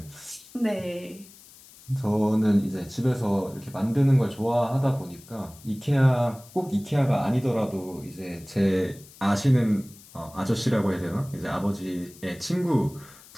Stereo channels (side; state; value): left; noise; hiss, 22 dB below the sound